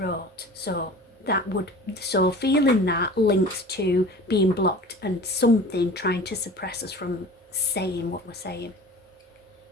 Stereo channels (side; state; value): both; normal; correlation 0.40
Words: So feeling that links to being blocked and something trying to suppress us from saying what we're saying.